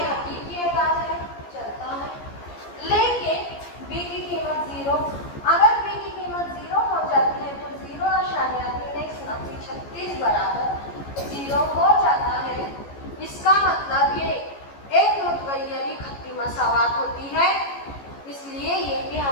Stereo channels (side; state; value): right; late; 14 ms